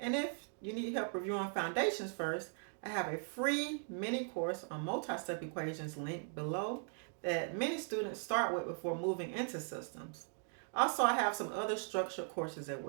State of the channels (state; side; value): silent; left; 52 dB below the other